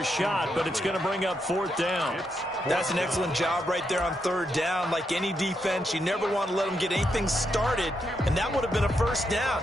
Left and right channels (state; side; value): normal; both; correlation 0.81